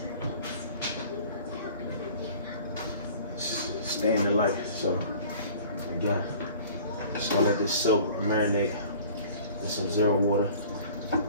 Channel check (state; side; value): inverted; both; correlation -0.47